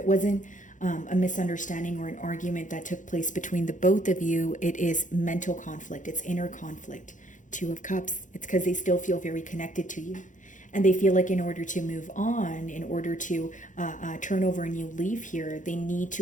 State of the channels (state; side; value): late; right; 0.37 ms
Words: wasn't a misunderstanding or an argument that took place between the both of you, it is mental conflict. It's inner conflict. 2 of Cups. It's because they still feel very connected to you. And they feel like in order to move on, in order to turn over a new leaf here, they need